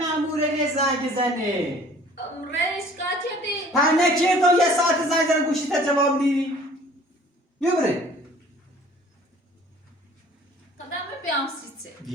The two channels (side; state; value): both; normal; correlation 0.51